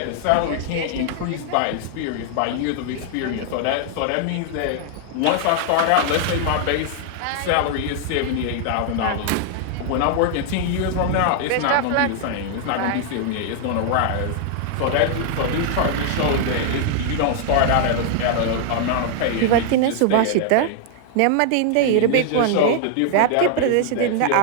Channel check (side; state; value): both; different; correlation 0.00